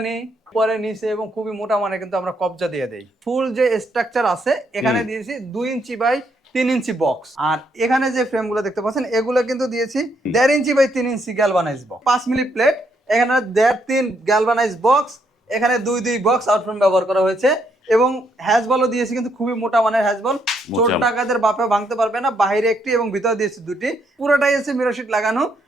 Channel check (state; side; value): normal; both; correlation 0.74